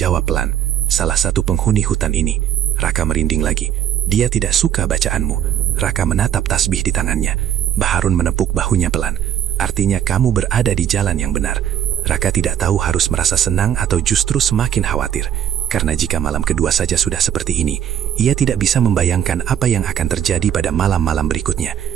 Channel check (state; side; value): quieter; left; 10.0 dB